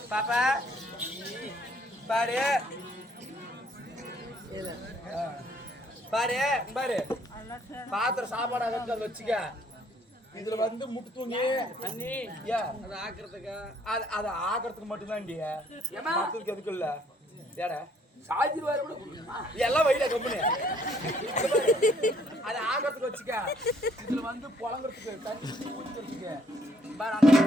பாப்பா பாரு பாரு பாரு பாத்திர சாப்பாடு அதை வச்சுக்க இதுல வந்து முட்டு தூங்கி அண்ணி அதை ஆக்குறதுக்கு அதை ஆக்குறதுக்கு மட்டும்தான் மத்ததுக்கு எதுக்கு இல்ல ஏடா சாஜி வர எல்லாம் வயல கம்பெனி அதை ஆக்குறதுக்கு வச்சுக்க இதுல வந்து புழங்குறதுக்கு தண்ணி ஊத்துறதுக்கு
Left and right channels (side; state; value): both; normal; correlation 0.65